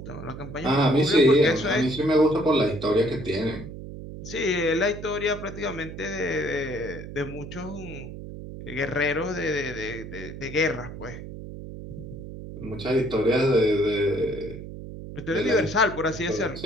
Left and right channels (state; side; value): noise; right; hum, 11 dB below the sound